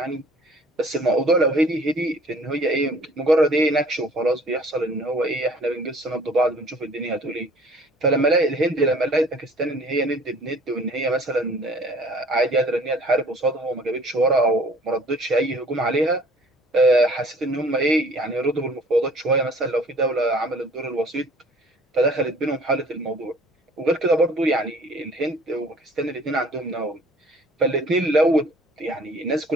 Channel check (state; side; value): normal; both; correlation 0.53